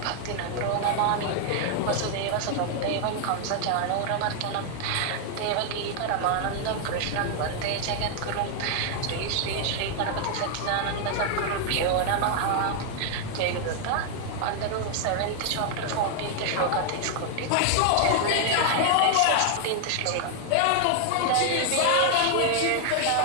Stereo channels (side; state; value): both; different; correlation 0.00